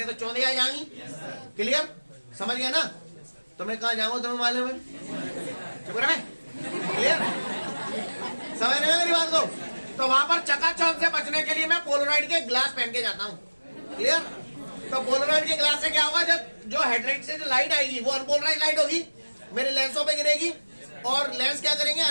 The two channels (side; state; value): both; inverted; correlation -1.00